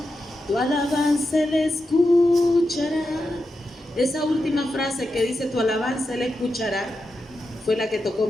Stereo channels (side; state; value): both; normal; correlation 0.88